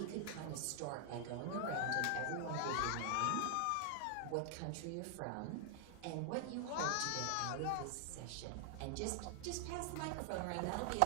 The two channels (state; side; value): different; both; correlation 0.00